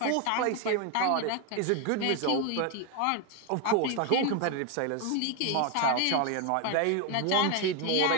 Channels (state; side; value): different; both; correlation 0.01